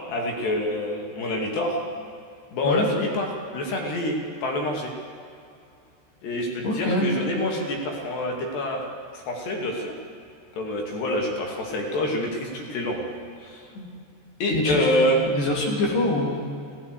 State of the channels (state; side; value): late; right; 14 ms